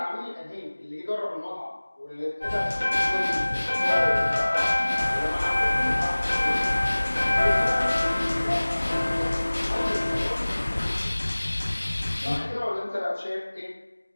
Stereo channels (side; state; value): both; inverted; correlation -1.00